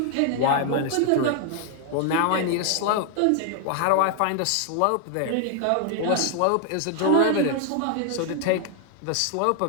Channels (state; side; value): different; both; correlation 0.00